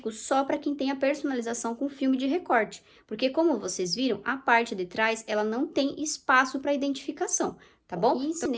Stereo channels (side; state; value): both; identical; correlation 1.00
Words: só para quem tem a personalização com filme de recorte, porque como vocês viram, a parte de trás, ela não tem espaço para identificação, tá bom? E